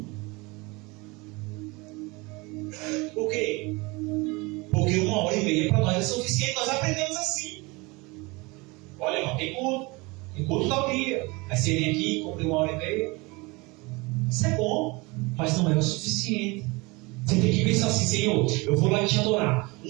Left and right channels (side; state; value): left; quieter; 25.4 dB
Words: Por quê? Porque 1h30 para nós é suficiente. Nós aprendemos assim. Olha, irmão, tem culto tal dia. Aí você vem aqui, cumpre 1h30. Isso é bom, mas não é o suficiente. Você tem que pensar assim: Senhor, eu vou lá te adorar